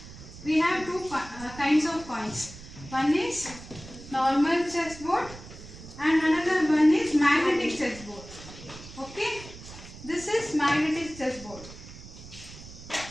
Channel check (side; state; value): right; noise; rumble, 16 dB below the sound